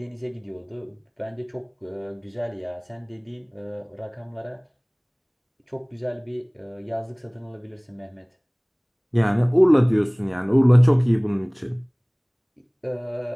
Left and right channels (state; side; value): identical; both; correlation 1.00